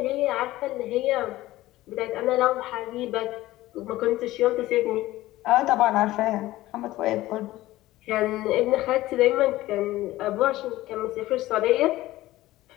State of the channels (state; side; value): quieter; right; 16.7 dB